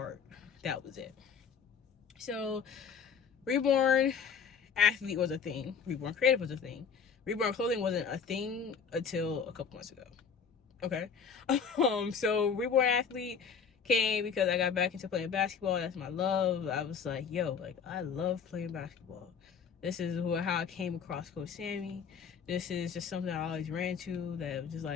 that was it. So Reborn Athlete was a thing. Reborn Creative was a thing. Reborn Clothing wasn't a thing until a couple months ago. Okay. So Reborn Athlete came because I got back into playing basketball. That's my love. I was like, yo, like, I love playing basketball. This is how I came across Coach Sammy. This is just something I always ran to that was just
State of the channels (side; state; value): right; quieter; 6.5 dB